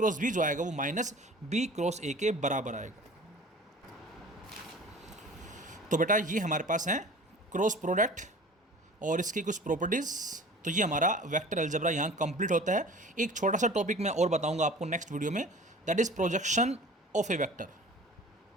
बी जो आएगा वो माइनस बी क्रॉस ए के बराबर आएगा। तो बेटा ये हमारे पास है क्रॉस प्रोडक्ट और इसकी कुछ प्रॉपर्टीज़। तो ये हमारा वेक्टर अलजेब्रा यहाँ कंप्लीट होता है। एक छोटा सा टॉपिक मैं और बताऊंगा आपको नेक्स्ट वीडियो में, that is projection of A vector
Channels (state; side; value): normal; both; correlation 0.43